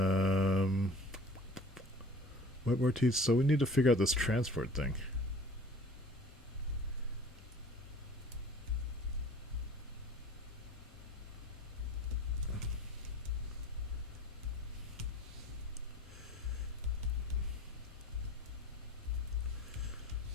WebRTC. So we need to figure out this transport thing.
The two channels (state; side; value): normal; both; correlation 0.46